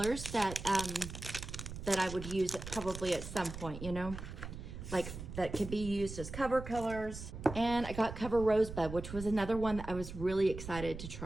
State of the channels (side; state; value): right; noise; rumble, 9 dB below the sound